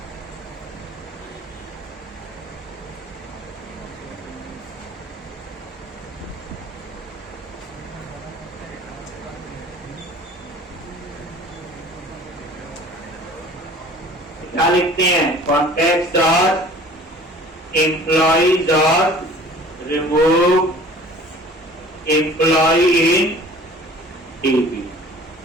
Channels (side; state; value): both; normal; correlation 0.47